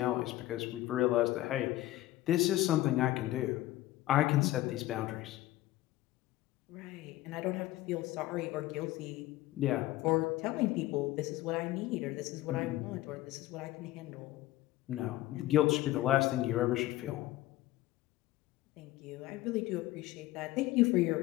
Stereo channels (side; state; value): right; quieter; 16.3 dB